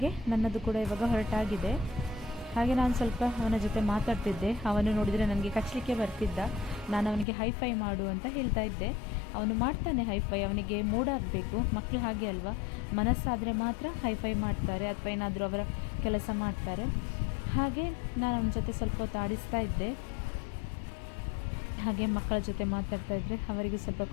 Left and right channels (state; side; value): drops out; right; at 7.2 s